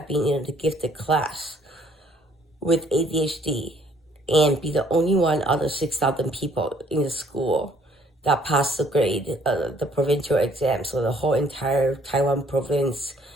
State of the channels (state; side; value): normal; both; correlation 0.62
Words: been in the gifted class with ADHD and be the only one out of 6,000 people in the school that passed the grade, the provincial exam, so the whole entire Taiwan province,